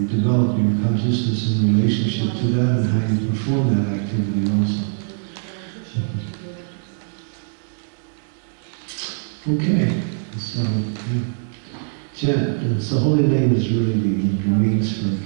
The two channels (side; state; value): left; silent; 64 dB below the other